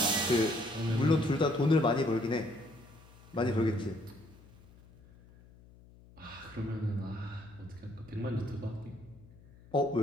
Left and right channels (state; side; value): noise; left; hum, 24 dB below the sound